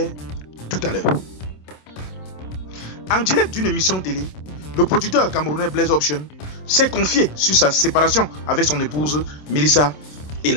tout à l'heure. En direct d'une émission télé, le producteur camerounais Blaise Option s'est confié sur sa séparation avec son épouse Melissa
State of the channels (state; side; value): late; right; 27 ms